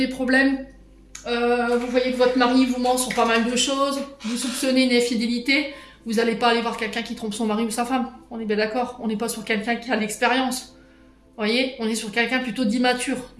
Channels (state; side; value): identical; both; correlation 1.00